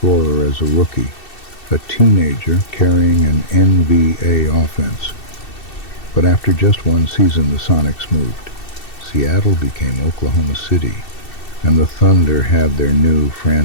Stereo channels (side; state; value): right; late; 2.7 ms